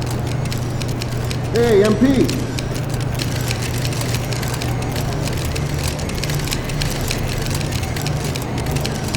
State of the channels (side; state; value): both; identical; correlation 1.00